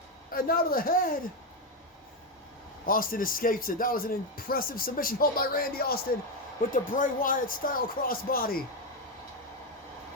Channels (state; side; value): normal; both; correlation 0.08